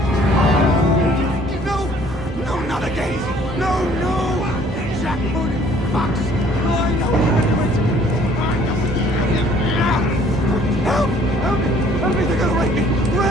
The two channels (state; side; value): normal; both; correlation 0.58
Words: No, not again. No. Jackpot, Fox. I know. Help me, they're gonna rape me.